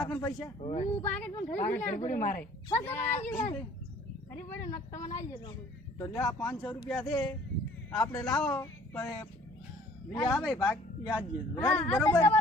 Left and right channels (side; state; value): both; normal; correlation 0.55